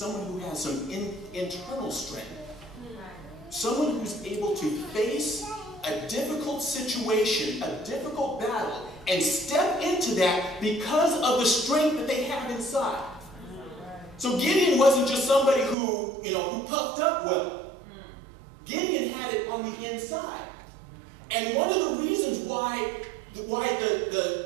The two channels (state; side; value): drops out; left; at 15.8 s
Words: who has some internal strength. Someone who's able to face a difficult situation, a difficult battle, and step into that because of the strength that they have inside. So Gideon wasn't just somebody who puffed up well. Gideon had it on the inside. And one of the reasons why